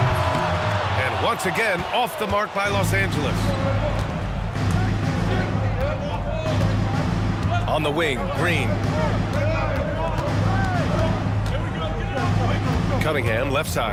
And once again, off the mark by Los Angeles. On the wing, Green. Cunningham, left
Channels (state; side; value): identical; both; correlation 1.00